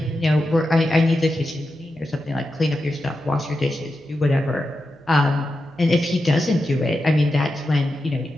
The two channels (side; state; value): right; noise; hum, 30 dB below the sound